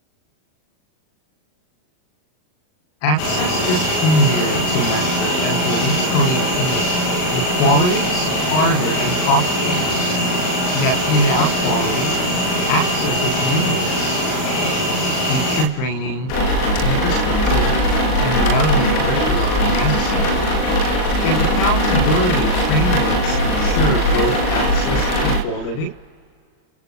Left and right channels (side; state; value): right; late; 39 ms